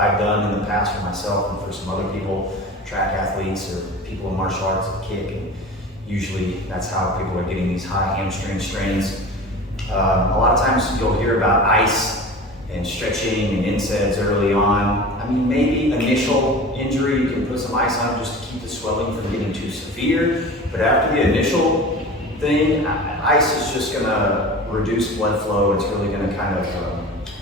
done in the past for myself and for some other people, track athletes or people in martial arts that kick. And usually that's how people are getting these high hamstring strains. A lot of times you'll hear about ice and stretching and NSAIDs early on. I mean, maybe initial injury, you can put some ice on just to keep the swelling from getting too severe. But after the initial thing, ice is just gonna reduce blood flow. It's really gonna kind of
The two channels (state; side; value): normal; both; correlation 0.35